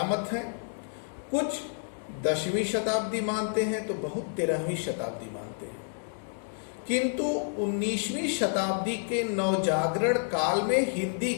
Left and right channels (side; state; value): right; silent; digital silence